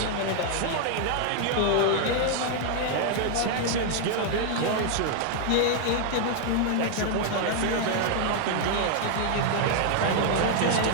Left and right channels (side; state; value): both; different; correlation 0.00